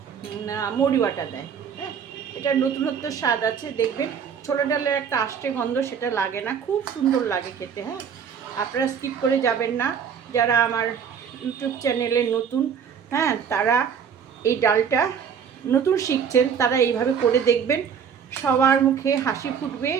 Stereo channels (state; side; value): quieter; left; 7.3 dB